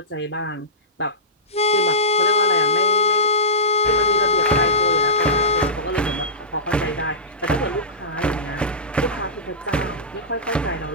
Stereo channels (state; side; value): normal; both; correlation -0.17